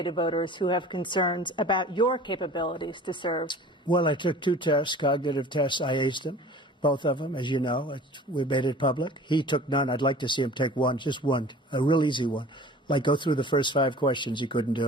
to voters who have concerns about your capabilities to serve? Well, I took 2 tests, cognitive tests. I aced them, both of them, as you know. We made it public. He took none. I'd like to see him take one, just one, a real easy one. Like go through the first 5 questions. He couldn't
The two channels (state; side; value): normal; both; correlation 0.44